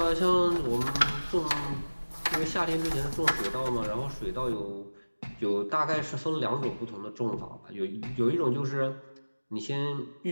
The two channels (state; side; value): inverted; both; correlation -1.00